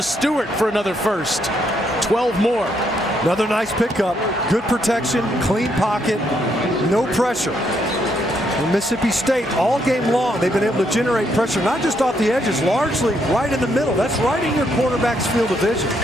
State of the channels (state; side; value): normal; both; correlation 0.74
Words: Stewart for another first. 12 more. Another nice pickup. Good protection, clean pocket, no pressure. And Mississippi State, all game long, they've been able to generate pressure, not just off the edges, largely right in the middle. That's right in your quarterback's field of vision.